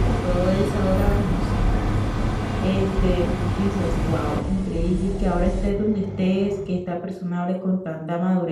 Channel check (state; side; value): identical; both; correlation 1.00